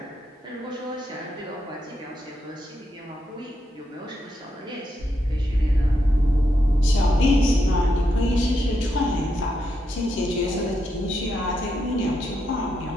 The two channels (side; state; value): both; normal; correlation 0.82